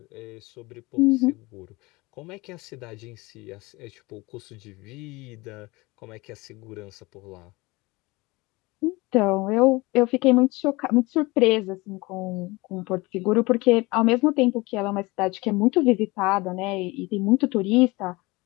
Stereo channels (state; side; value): quieter; right; 23.1 dB